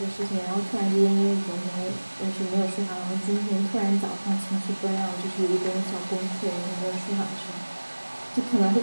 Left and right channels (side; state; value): both; inverted; correlation -1.00